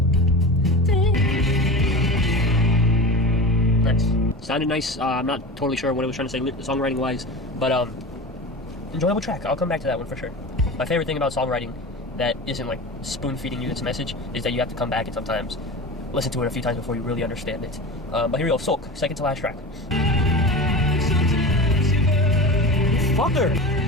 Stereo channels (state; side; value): normal; both; correlation 0.30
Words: Nice. Sounded nice. I'm not totally sure what it was trying to say songwriting wise, but enjoyable track. I'll come back to that one for sure. My favorite thing about songwriting that isn't like spoon feeding you its message is that you have to come back and sometimes listen to it a few times before you really understand it. But here we go, Sulk, second to last track. Fucker!